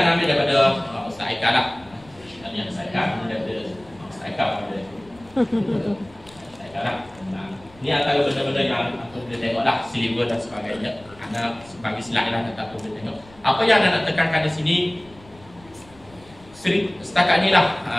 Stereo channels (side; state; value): left; noise; rumble, 25 dB below the sound